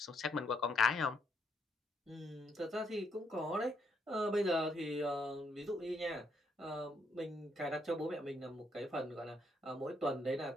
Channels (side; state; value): both; normal; correlation 0.74